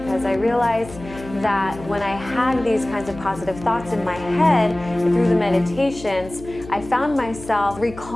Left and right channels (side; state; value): left; noise; hum, 16 dB below the sound